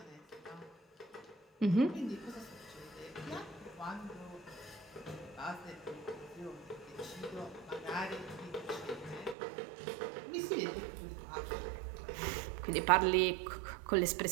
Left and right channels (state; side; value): drops out; left; at 9.3 s